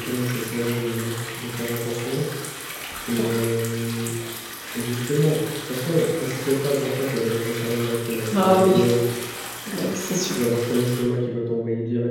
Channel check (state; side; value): identical; both; correlation 1.00